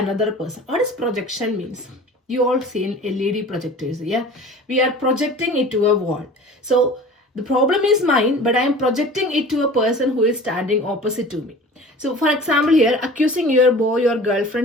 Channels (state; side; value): normal; both; correlation 0.41